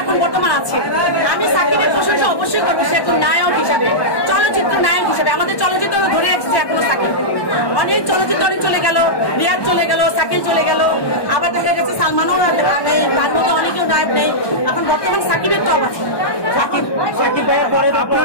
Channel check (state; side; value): late; right; 1.2 ms